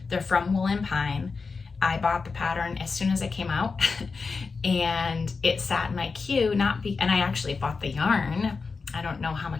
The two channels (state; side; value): quieter; right; 4.6 dB